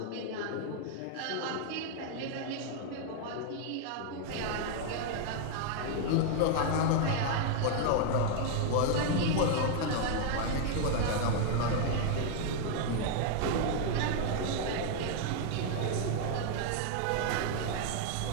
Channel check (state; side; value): different; both; correlation 0.00